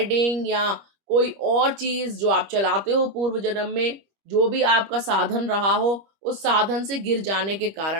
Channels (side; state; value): left; late; 25 ms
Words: या कोई और चीज जो आप चलाते हो पूर्व जन्म में, जो भी आपका साधन रहा हो, उस साधन से गिर जाने के